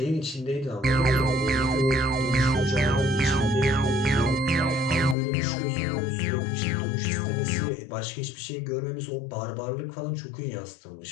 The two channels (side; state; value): right; drops out; at 5.2 s